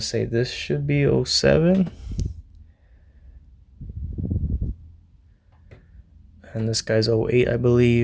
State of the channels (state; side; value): identical; both; correlation 1.00